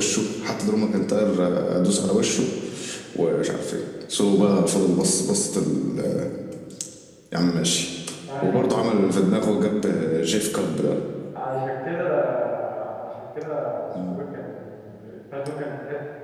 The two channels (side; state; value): both; identical; correlation 1.00